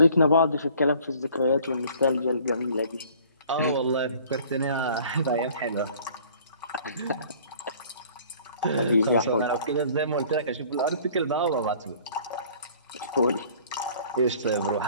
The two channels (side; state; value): both; inverted; correlation -0.52